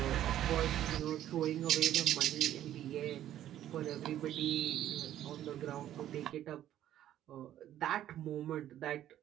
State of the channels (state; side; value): quieter; left; 12.0 dB